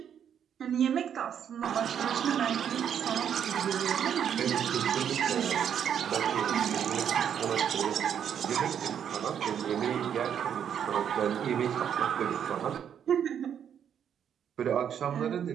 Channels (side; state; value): left; quieter; 8.6 dB